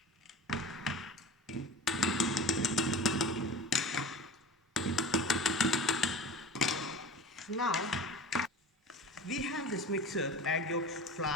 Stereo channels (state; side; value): normal; both; correlation 0.35